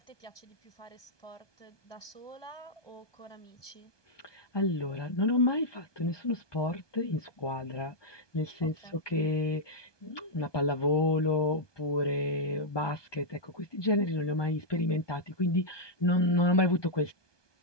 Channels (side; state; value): right; late; 1.2 ms